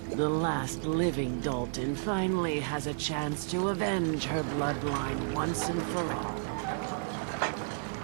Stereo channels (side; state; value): left; silent; digital silence